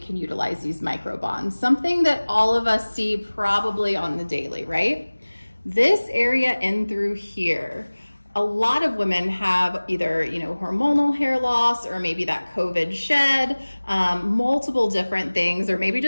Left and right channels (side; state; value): both; inverted; correlation -1.00